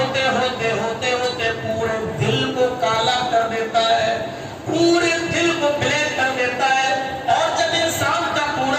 ہوتے ہوتے ہوتے پورے دل کو کالا کر دیتا ہے، پورے دل کو بلیک کر دیتا ہے، اور جب انسان کا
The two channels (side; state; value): both; identical; correlation 1.00